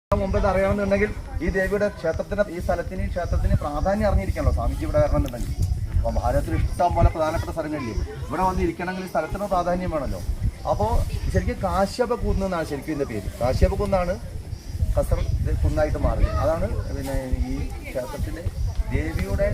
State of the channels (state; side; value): identical; both; correlation 1.00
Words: മുമ്പ് അറിയണമെന്നുണ്ടെങ്കിൽ ഈ ദേവിയുടെ ക്ഷേത്രത്തിന് ഈ ക്ഷേത്രത്തിന് പ്രാധാന്യം അറിഞ്ഞിരിക്കണല്ലോ സ്വാമിജി ഇവിടെ വരണമെന്നുണ്ടെങ്കിൽ. അപ്പോൾ ഭാരതത്തിൽ ഇഷ്ടം പോലെ പ്രധാനപ്പെട്ട സ്ഥലങ്ങളില്ലേ, ഇവിടെ വന്നിരിക്കണമെങ്കിൽ ഈ സ്ഥലത്തിന് പ്രാധാന്യം വേണമല്ലോ. അപ്പോൾ ശരിക്കും കാശ്യപ കുന്ന് എന്നാണ് ശരിക്കും ഇതിൻ്റെ പേര്. കാശ്യപ കുന്നാണ് കസർ കുന്നായിട്ട് മാറിയത്. അതാണ് പിന്നെ ഈ ക്ഷേത്രത്തിൻ്റെ ദേവിയുടെ